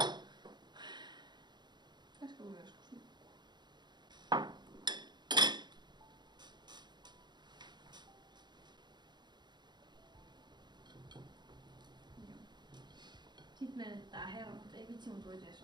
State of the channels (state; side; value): late; left; 0.21 ms